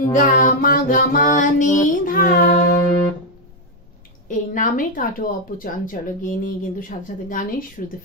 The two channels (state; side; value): normal; both; correlation 0.02